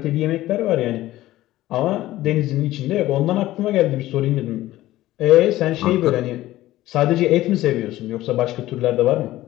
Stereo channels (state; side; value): quieter; right; 15.8 dB